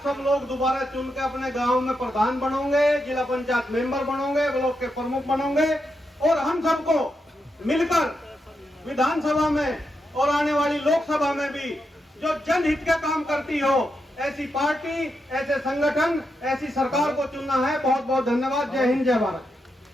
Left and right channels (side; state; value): both; normal; correlation 0.85